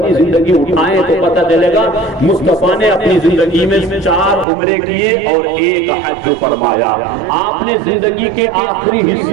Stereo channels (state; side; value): drops out; left; at 4.5 s